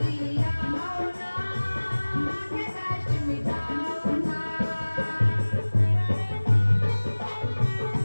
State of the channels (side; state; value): both; inverted; correlation -1.00